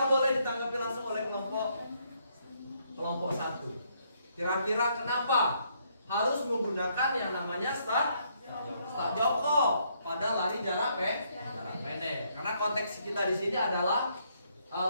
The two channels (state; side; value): inverted; both; correlation -0.72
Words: boleh ditanggapi langsung oleh kelompok 1. Kira-kira kenapa harus menggunakan yang namanya start jongkok pada lari jarak pendek? Karena konteks kita di sini adalah